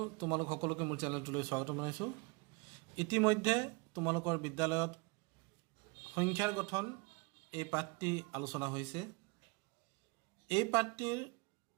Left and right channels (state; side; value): quieter; left; 29.0 dB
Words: তোমালোক সকলোকে মোৰ চেনেলটোলৈ স্বাগতম জনাইছোঁ। ইতিমধ্যে তোমালোকৰ বিদ্যালয়ত সংখ্যাৰ গঠন এই পাঠটি আলোচনা হৈছে। এই পাঠটিৰ